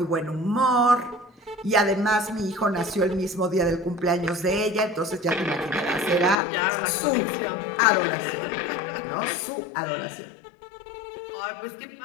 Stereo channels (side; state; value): right; drops out; at 6.4 s